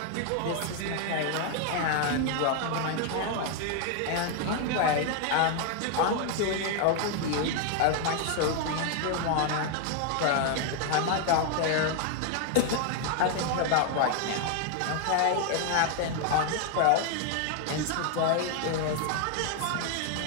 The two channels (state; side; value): different; both; correlation 0.00